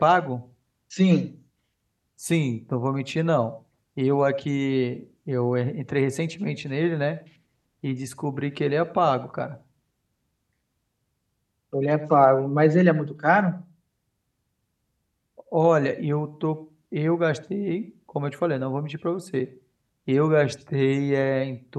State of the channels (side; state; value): both; identical; correlation 1.00